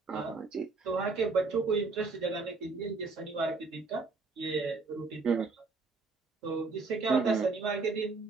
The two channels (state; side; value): quieter; left; 4.1 dB